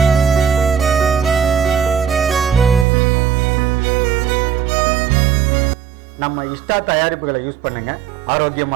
நம்ம இஷ்டா தயாரிப்புகளை யூஸ் பண்ணுங்க,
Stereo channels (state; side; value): drops out; left; at 2.9 s